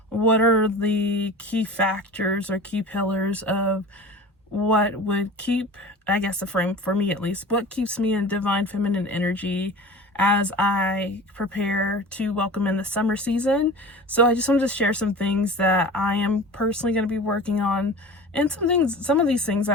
what are the key factors or key pillars of what would keep, I guess the frame for me at least, what keeps me in divine feminine energy as I prepare to welcome in the summer season. So I just wanted to share some things that I am personally going to be working on, and some of these things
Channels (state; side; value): normal; both; correlation 0.36